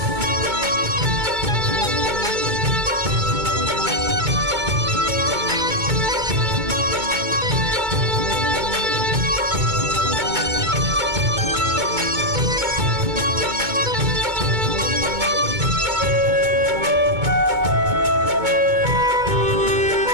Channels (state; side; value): late; left; 2.2 ms